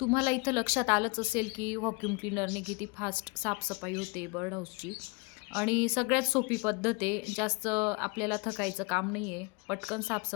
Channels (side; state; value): right; quieter; 29.7 dB